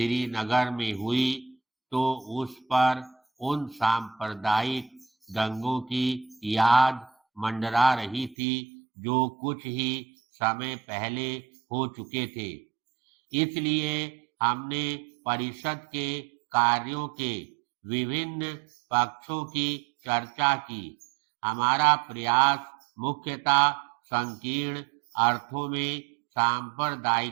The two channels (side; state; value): left; drops out; at 8.3 s